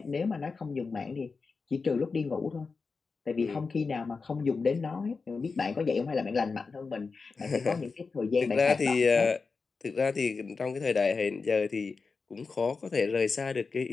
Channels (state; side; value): quieter; right; 4.6 dB